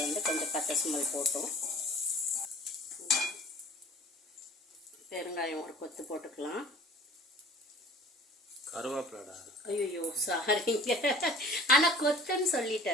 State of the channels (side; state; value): both; normal; correlation 0.46